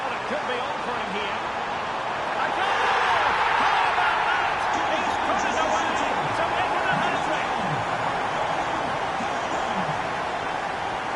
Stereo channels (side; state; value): both; identical; correlation 1.00